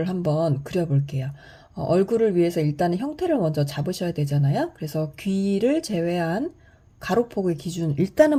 한번 그려볼게요. 얼굴을 위해서 일단은 형태를 먼저 잡으셔야 되잖아요. 그래서 귀를 제외한 가로폭의 기준,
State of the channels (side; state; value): both; identical; correlation 1.00